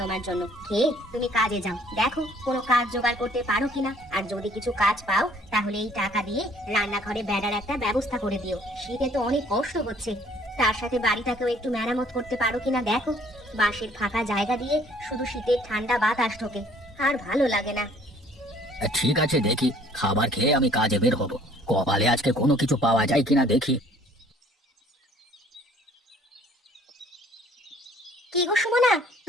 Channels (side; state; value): both; normal; correlation 0.58